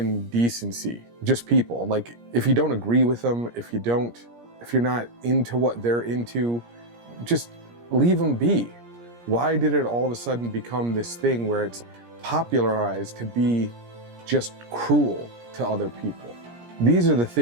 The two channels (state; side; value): late; left; 17 ms